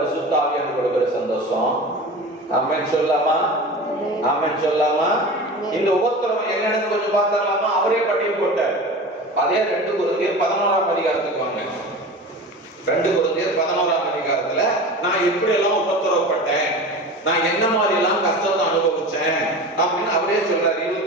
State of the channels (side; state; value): both; normal; correlation 0.33